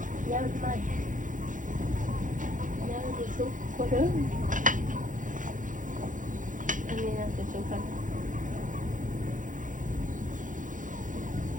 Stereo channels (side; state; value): left; late; 0.38 ms